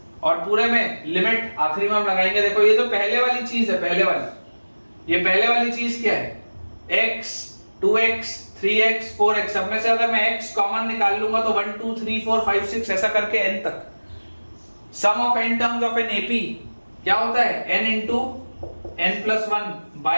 और पूरे में लिमिट आखिरी में हम लगाएंगे। देखो ये जो पहले वाली चीज है, पहले वाली चीज क्या है, x 2x 3x 4x, सब में से अगर मैं x कॉमन निकाल लूंगा तो 1 2 3 4 5 6 ऐसा करके n तक। Sum of n terms of an AP क्या होता है, n into n plus 1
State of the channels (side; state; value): both; inverted; correlation -1.00